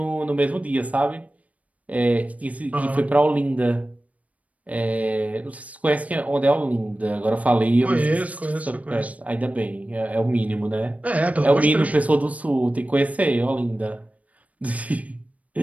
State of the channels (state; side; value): late; left; 0.069 ms